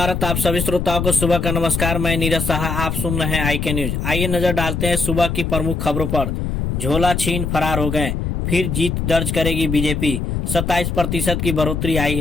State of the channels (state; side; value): noise; left; rumble, 2 dB below the sound